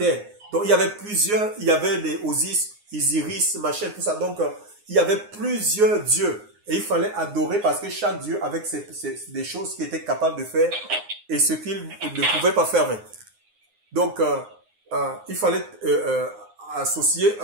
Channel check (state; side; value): late; left; 9.7 ms